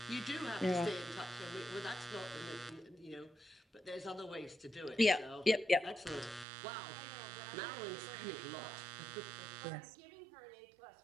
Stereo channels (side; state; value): left; drops out; at 6.5 s